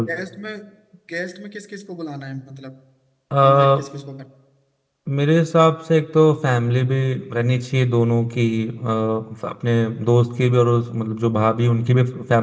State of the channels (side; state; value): both; identical; correlation 1.00